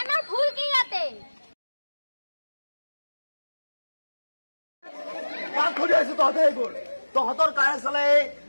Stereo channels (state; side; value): inverted; both; correlation -1.00